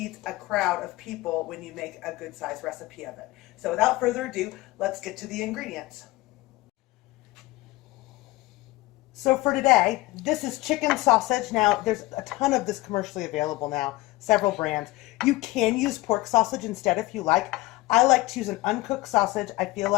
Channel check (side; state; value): right; quieter; 19.5 dB